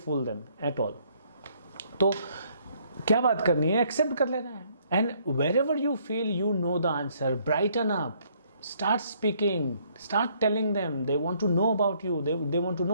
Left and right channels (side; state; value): both; inverted; correlation -0.66